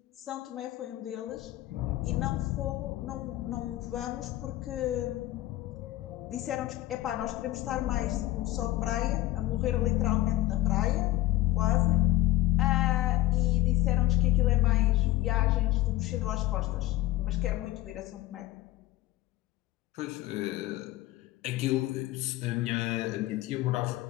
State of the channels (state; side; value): quieter; right; 16.6 dB